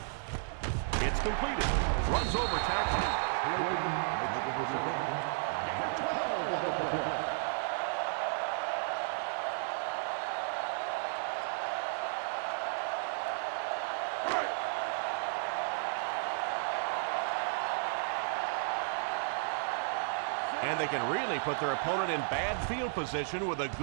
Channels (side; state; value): left; silent; digital silence